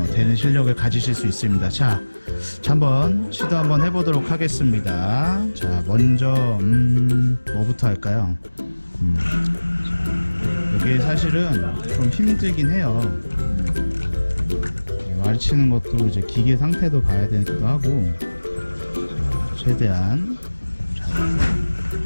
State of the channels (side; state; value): both; inverted; correlation -1.00